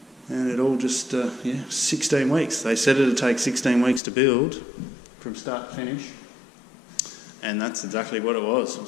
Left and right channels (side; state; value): right; drops out; at 4.0 s